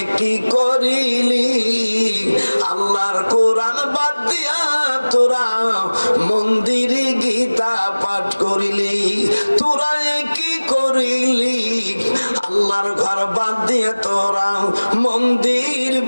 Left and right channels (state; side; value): inverted; both; correlation -1.00